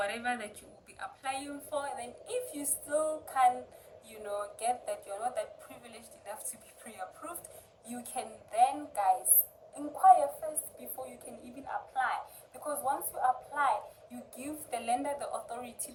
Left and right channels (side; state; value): both; identical; correlation 1.00